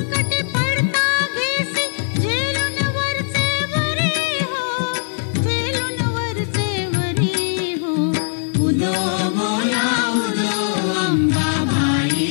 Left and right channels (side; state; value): right; silent; digital silence